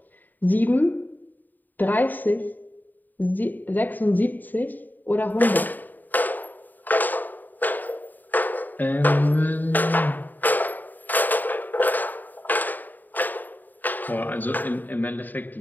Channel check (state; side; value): late; right; 0.087 ms